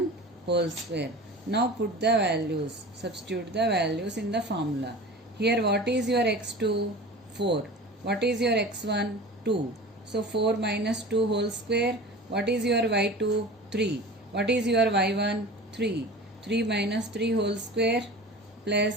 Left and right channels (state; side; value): normal; both; correlation 0.36